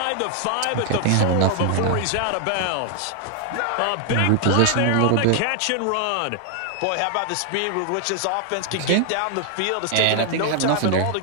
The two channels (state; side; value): different; both; correlation 0.00